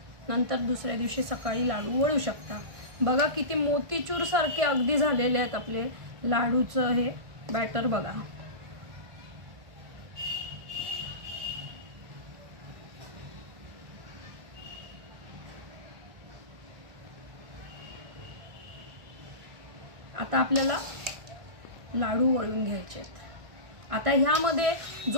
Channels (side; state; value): left; late; 1.6 ms